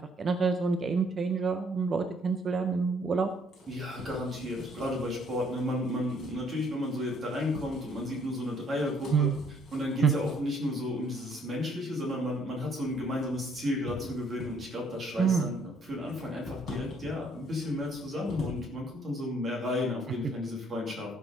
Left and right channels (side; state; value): both; normal; correlation 0.65